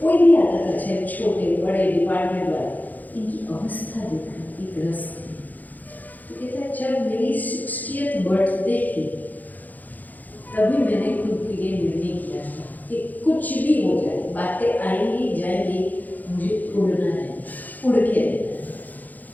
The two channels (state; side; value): late; right; 0.082 ms